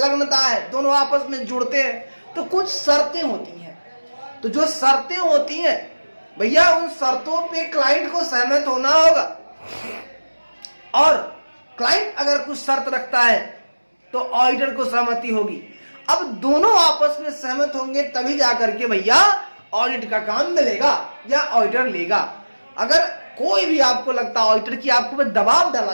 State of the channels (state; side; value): inverted; both; correlation -1.00